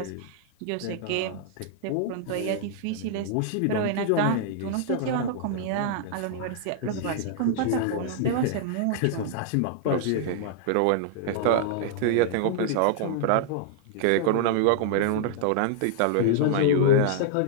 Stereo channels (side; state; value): both; different; correlation -0.01